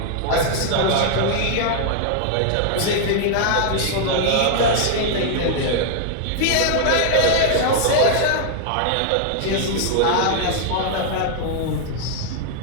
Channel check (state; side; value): different; both; correlation 0.00